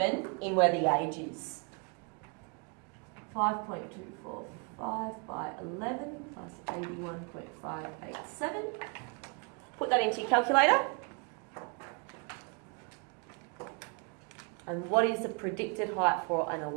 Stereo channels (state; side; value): quieter; left; 34.6 dB